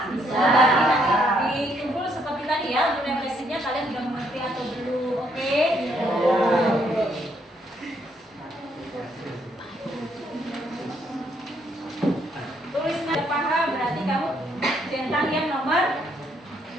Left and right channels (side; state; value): both; normal; correlation 0.71